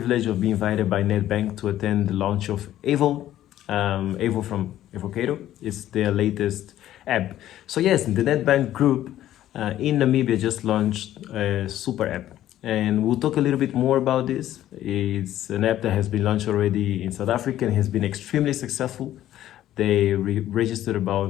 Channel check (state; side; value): quieter; right; 12.9 dB